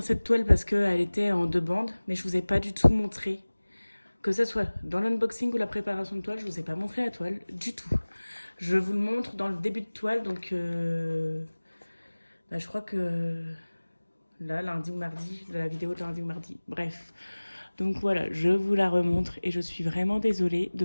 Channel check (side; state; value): both; inverted; correlation -1.00